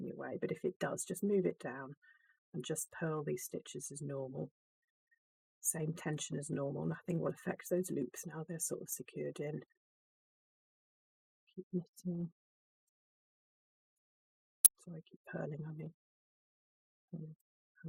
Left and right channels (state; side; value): identical; both; correlation 1.00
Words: your way, but if it does, just move it down and just purl these stitches as normal. Same tension as normal, nothing will affect those loops now, they're sort of secured in. Keep knitting. Sorry, keep purling, I mean. And